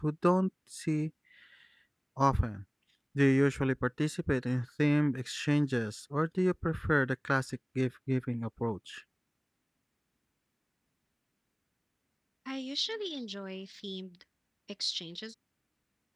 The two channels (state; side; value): identical; both; correlation 1.00